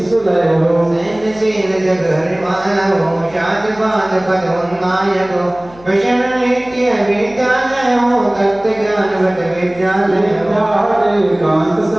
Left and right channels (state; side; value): noise; left; hum, 23 dB below the sound